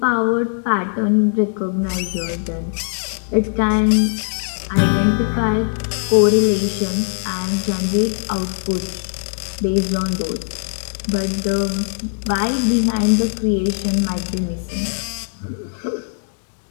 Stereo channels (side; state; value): right; silent; 66 dB below the other